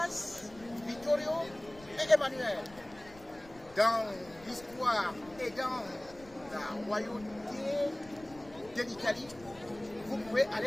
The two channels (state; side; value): noise; left; rumble, 21 dB below the sound